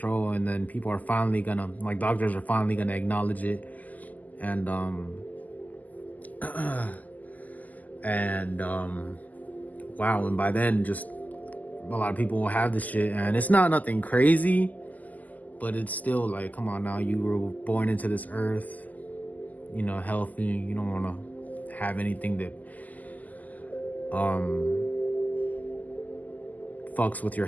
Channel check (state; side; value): late; right; 0.080 ms